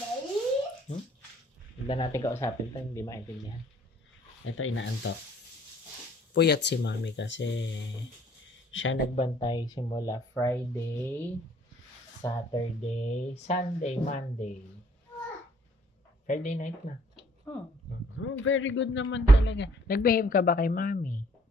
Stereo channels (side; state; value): both; normal; correlation 0.60